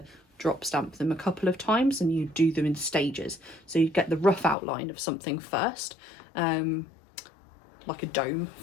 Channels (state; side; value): drops out; right; at 4.5 s